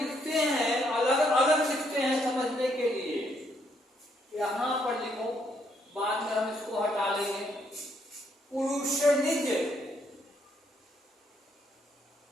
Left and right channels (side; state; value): both; normal; correlation 0.72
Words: हैं, अलग अलग लिखते हैं समझने के लिए। यहां पर लिखो, बाद में हम इसको हटा लेंगे। पुरुष निज